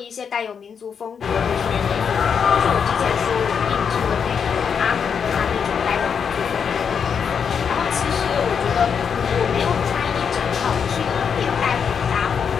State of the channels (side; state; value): right; quieter; 6.8 dB